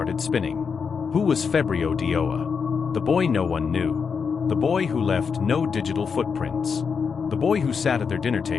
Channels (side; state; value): right; quieter; 5.9 dB